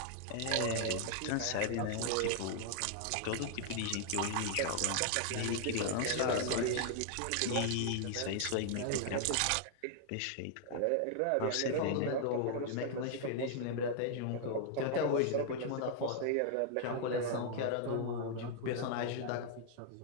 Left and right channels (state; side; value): different; both; correlation -0.01